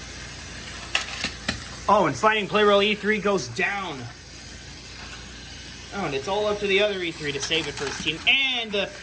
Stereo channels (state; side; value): identical; both; correlation 1.00